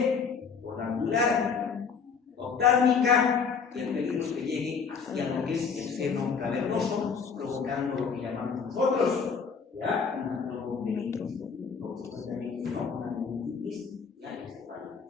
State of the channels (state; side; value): quieter; right; 5.9 dB